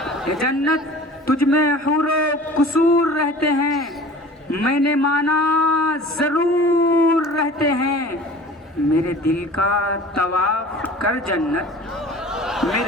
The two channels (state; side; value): normal; both; correlation 0.43